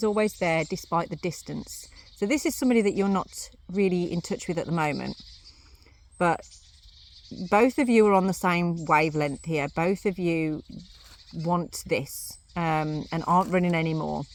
always there despite the distance. So this is somebody that you're not really in touch with at the moment, but both of you are on the same wavelength here. Both of you want this, and aren't running anymore,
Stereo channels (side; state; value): both; identical; correlation 1.00